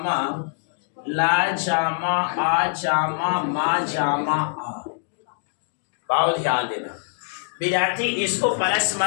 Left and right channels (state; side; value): silent; right; digital silence